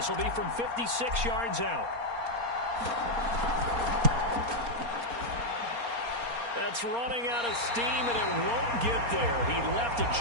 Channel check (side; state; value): left; late; 4.3 ms